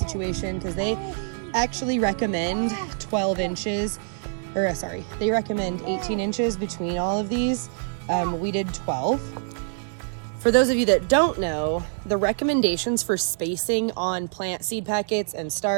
because they actually recommend 12 inches, or sorry, they recommend 18 inches between all of these. We did 12. For those of you that don't know, the recommendations for spacing on plant seed packets and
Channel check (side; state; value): left; silent; digital silence